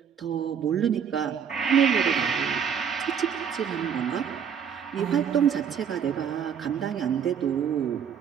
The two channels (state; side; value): quieter; left; 7.6 dB